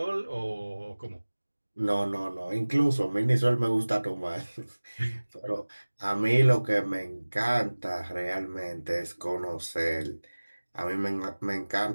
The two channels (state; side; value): inverted; both; correlation -1.00